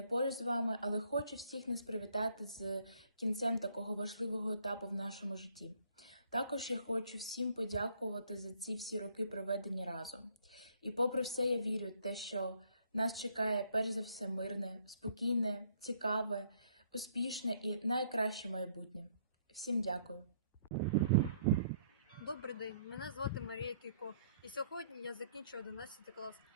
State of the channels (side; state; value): both; inverted; correlation -0.65